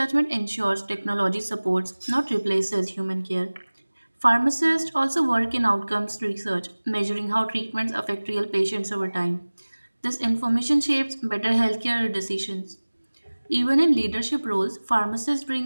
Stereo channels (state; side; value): inverted; both; correlation -1.00